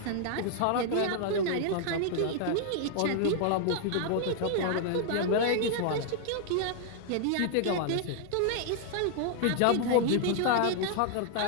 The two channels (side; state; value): both; different; correlation 0.00